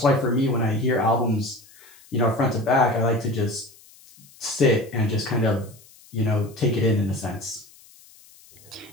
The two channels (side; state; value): left; noise; hiss, 25 dB below the sound